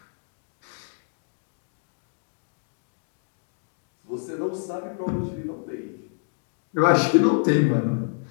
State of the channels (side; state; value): right; silent; digital silence